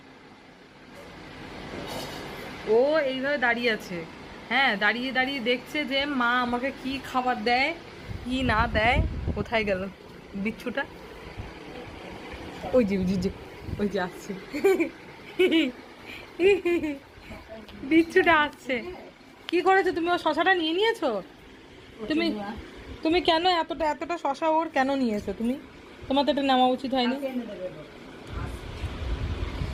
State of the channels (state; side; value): identical; both; correlation 1.00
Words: ও এইভাবে দাঁড়িয়ে আছে, হ্যাঁ, দাঁড়িয়ে দাঁড়িয়ে দেখছে যে মা আমাকে কি খাবার দেয় কি না দেয়। কোথায় গেল বিচ্ছুটা? ওই যে ওই যে ওই যে আসছে, বিচ্ছুটা আসছে। কি করেছো তুমি? ও শশাটা নিয়ে নিয়েছো? তুমি তুমি কেন এতটা এতটা শশা ওর কেন নিয়েছো তুমি? তোমার তো এটা নেওয়া উচিত হয়নি।